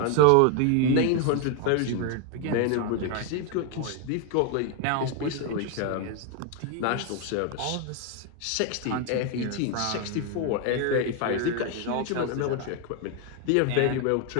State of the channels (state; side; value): different; both; correlation 0.01